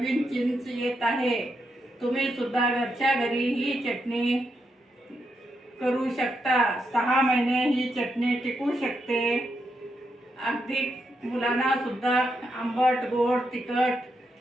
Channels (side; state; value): both; normal; correlation 0.82